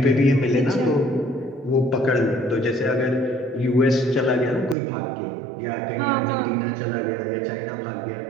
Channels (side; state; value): left; drops out; at 4.8 s